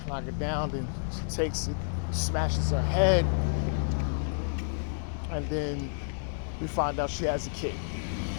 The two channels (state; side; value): silent; right; digital silence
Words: knock it down, then she takes it, smashes her head, and then we find out she has a kid,